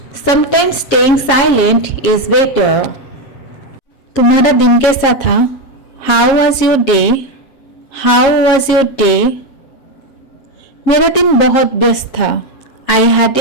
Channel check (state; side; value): late; right; 7.2 ms